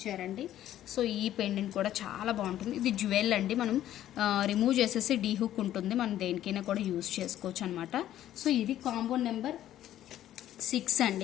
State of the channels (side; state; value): right; quieter; 12.4 dB